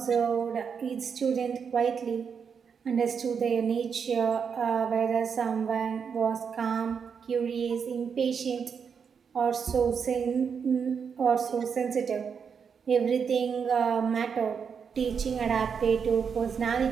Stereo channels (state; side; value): quieter; left; 6.5 dB